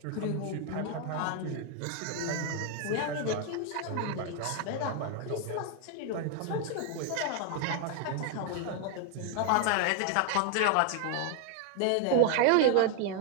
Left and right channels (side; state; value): both; different; correlation 0.00